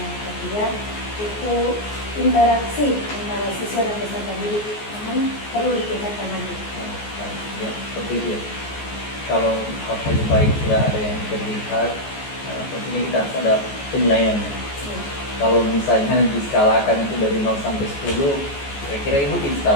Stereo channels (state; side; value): late; right; 14 ms